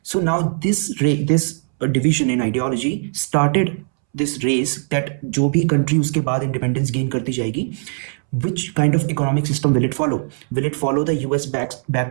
So now this division in ideology started this race that जो भी country उसके बाद independence gain करती जाएगी, which kind of economic system will it follow? Will it follow the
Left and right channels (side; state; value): left; silent; 66 dB below the other